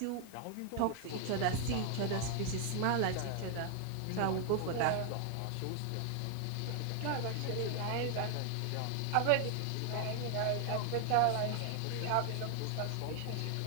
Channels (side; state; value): both; different; correlation 0.00